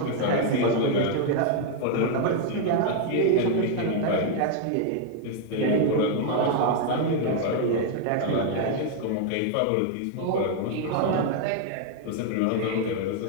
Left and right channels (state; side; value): different; both; correlation 0.00